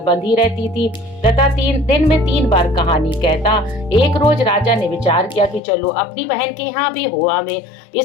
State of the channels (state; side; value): drops out; right; at 5.6 s